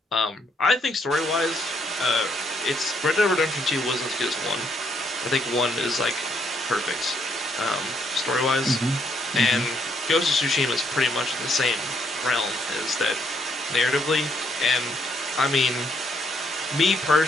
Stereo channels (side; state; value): both; normal; correlation 0.72